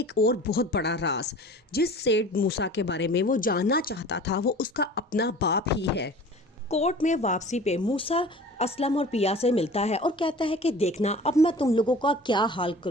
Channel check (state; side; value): normal; both; correlation 0.42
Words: और बहुत बड़ा राज। जिस सेठ मूसा के बारे में वो जानना चाहता था वो उसका अपना बाप ही है। कोर्ट में वापसी पे मूसा असलम और पिया से मिलता है और कहता है कि देखना अब मैं तुम लोगों का क्या हाल